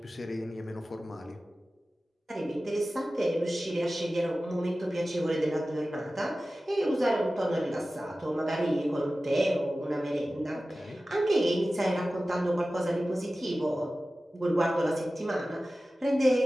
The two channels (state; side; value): normal; both; correlation 0.96